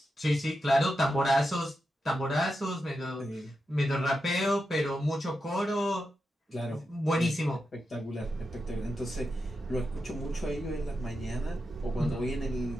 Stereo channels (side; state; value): both; normal; correlation 0.88